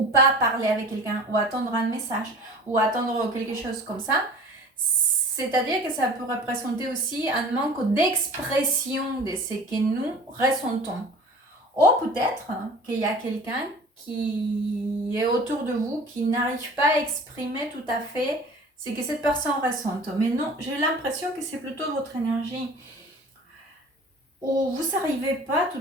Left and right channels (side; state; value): both; normal; correlation 0.43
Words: pas parler avec quelqu'un ou attendre un message ou attendre quelque chose comme ça, c'est-à-dire que ça peut représenter aussi un manque d'expression de ce que nous ressentons. Ou peut-être qu'il y a quelqu'un qui est autour de vous qui n'arrive pas à exprimer tout à fait ce que cette personne ressente. Mais non, j'ai l'impression que c'est plutôt votre énergie où vous n'arrivez pas tout